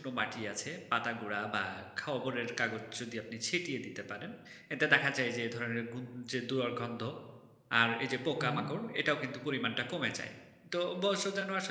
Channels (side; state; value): both; identical; correlation 1.00